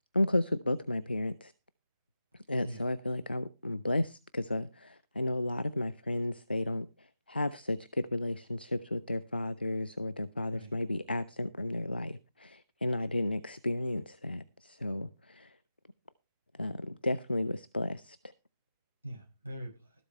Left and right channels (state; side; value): inverted; both; correlation -0.94